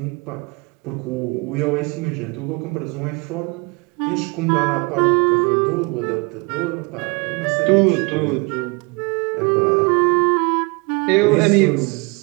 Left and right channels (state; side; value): quieter; left; 29.0 dB